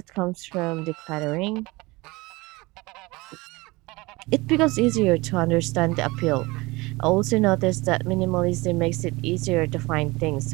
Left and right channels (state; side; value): quieter; left; 22.8 dB